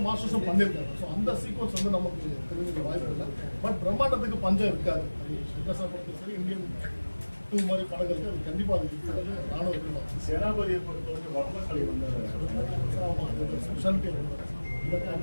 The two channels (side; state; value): both; inverted; correlation -1.00